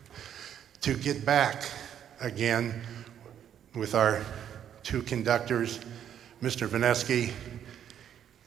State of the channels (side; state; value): left; quieter; 9.5 dB